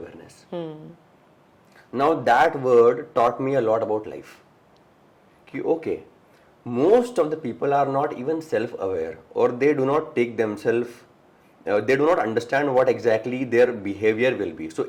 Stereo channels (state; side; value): identical; both; correlation 1.00